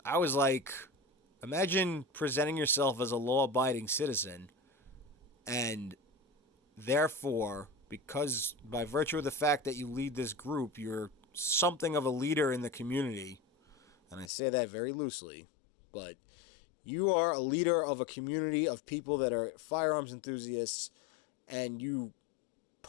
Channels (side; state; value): right; drops out; at 14.3 s